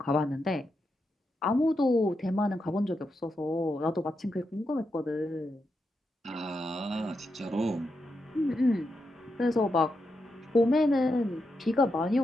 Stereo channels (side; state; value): both; normal; correlation 0.85